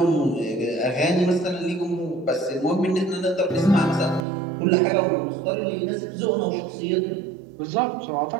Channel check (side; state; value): left; drops out; at 4.2 s